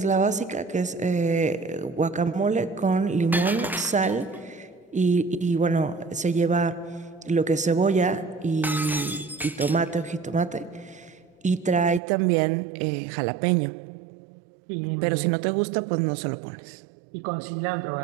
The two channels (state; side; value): drops out; left; at 12.0 s